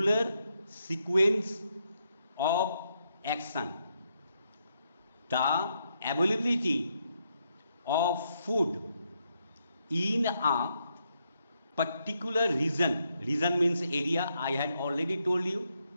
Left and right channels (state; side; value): inverted; both; correlation -0.79